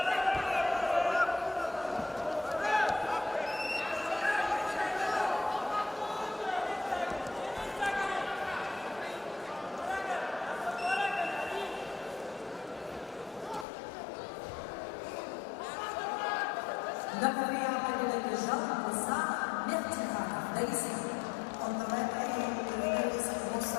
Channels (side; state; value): right; drops out; at 13.7 s